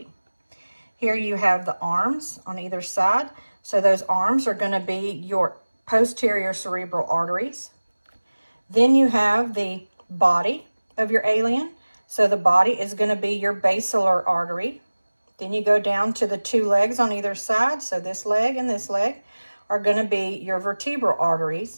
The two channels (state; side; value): inverted; both; correlation -1.00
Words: Here you have the arms on either side. So those arms are going to be your posterior cerebral arteries. Then you have the body of your alien. So the body is going to be your basilar artery. Then you go down to the two legs on either side. So this leg and this leg are going to be your vertebral